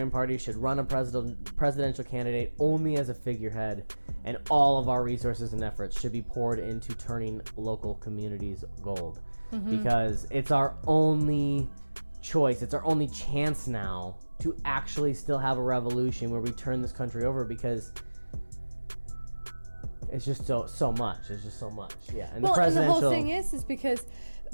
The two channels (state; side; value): inverted; both; correlation -1.00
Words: Party should run a presidential candidate only as a figurehead, and all of our resources and efforts should be poured into turning local communities gold. Because it's our only choice. It's our only chance now to actually still have a revolution where we turn this country over, because it's just so much. It's just so much. Yeah. And the presidential... the whole thing is because